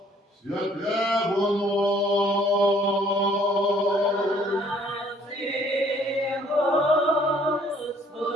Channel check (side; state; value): both; normal; correlation 0.60